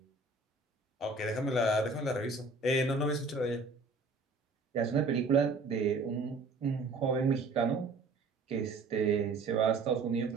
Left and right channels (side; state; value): left; quieter; 3.6 dB